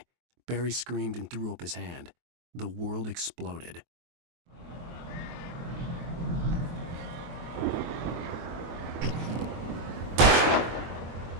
Barry screamed and threw up his hand. The world exploded.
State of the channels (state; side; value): late; left; 23 ms